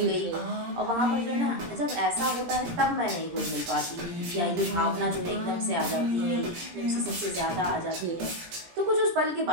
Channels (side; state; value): left; late; 17 ms